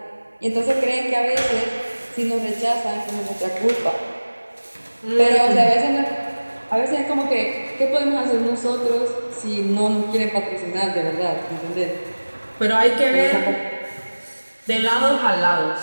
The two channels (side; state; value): both; inverted; correlation -1.00